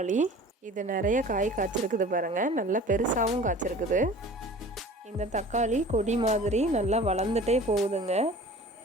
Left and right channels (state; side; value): normal; both; correlation 0.43